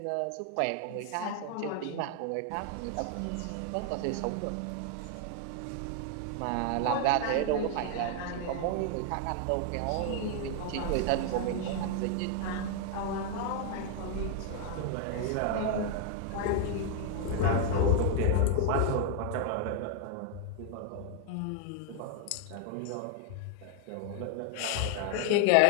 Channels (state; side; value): different; both; correlation 0.00